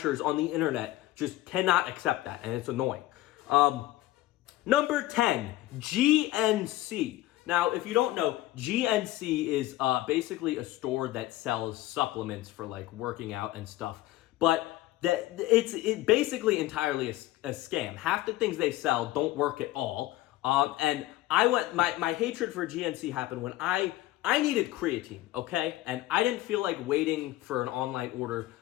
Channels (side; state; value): right; quieter; 16.3 dB